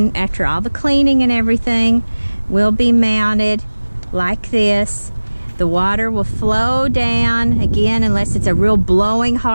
after all the cleaning and everything, will be mounted like this. The water will flow down, again, unless it's a real blowing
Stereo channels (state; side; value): inverted; both; correlation -1.00